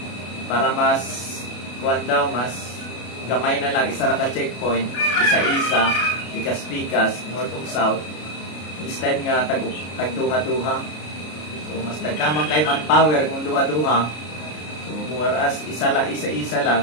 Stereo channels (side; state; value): right; late; 33 ms